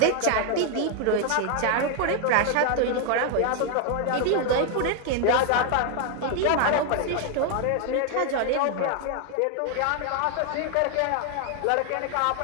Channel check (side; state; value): both; different; correlation 0.01